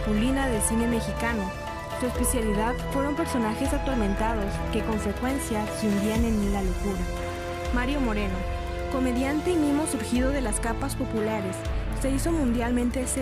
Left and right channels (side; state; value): both; identical; correlation 1.00